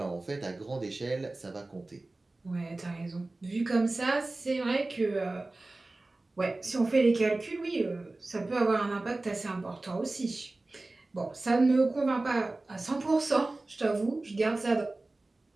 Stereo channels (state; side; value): quieter; left; 3.0 dB